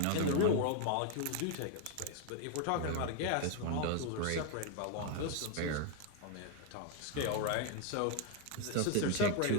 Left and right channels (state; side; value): different; both; correlation 0.00